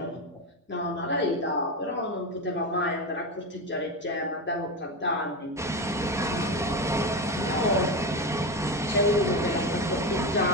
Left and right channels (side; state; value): both; normal; correlation 0.17